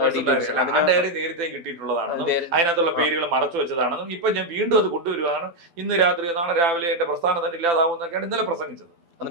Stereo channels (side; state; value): left; late; 12 ms